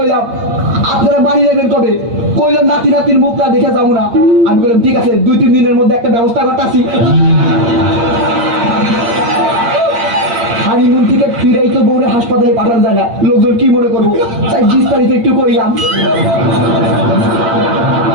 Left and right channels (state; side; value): late; left; 8.6 ms